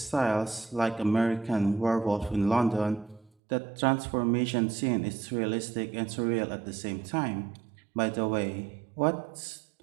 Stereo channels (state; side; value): drops out; left; at 3.3 s